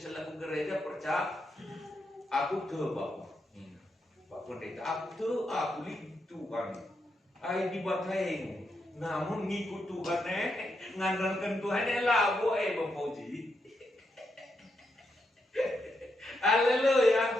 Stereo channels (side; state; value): both; normal; correlation 0.82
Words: laku gereja percaya, aku tuh Bapak. Pak Pendeta, aku lihat Tuhan. Ay dibateng. Namun ngikut Tuhan ngandalkan Tuhan lah boy Bang Fauzi.